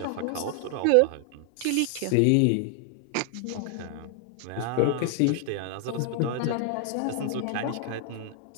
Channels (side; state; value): both; different; correlation 0.00